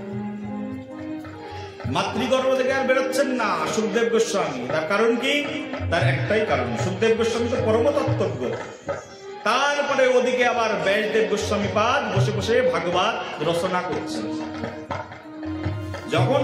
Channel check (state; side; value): identical; both; correlation 1.00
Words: মাতৃগর্ভ থেকে আর বেরোচ্ছেন না সুখদেব গোস্বামী। তার কারণ কি? তার একটাই কারণ, সুখদেব গোস্বামী তো পরম তত্ত্বজ্ঞ। তারপরে ওদিকে আবার ব্যাসদেব গোস্বামী পাদ বসে বসে ভাগবত রচনা করছেন। যখন